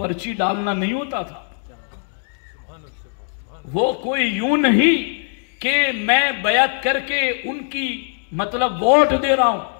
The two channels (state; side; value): silent; right; 65 dB below the other